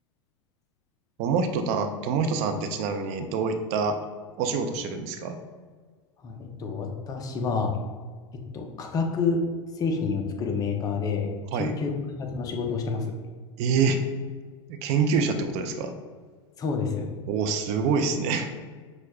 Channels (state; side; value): normal; both; correlation 0.21